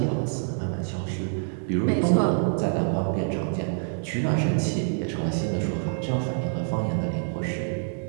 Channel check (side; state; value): left; silent; 61 dB below the other